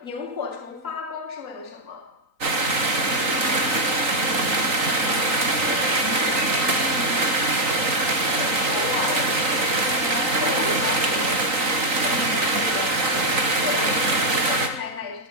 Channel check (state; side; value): late; left; 3.9 ms